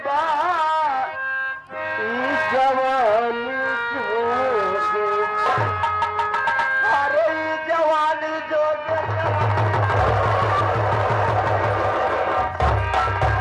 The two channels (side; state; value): both; identical; correlation 1.00